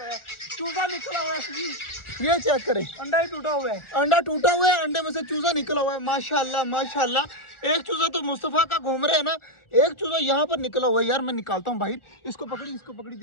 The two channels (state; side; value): late; right; 1.4 ms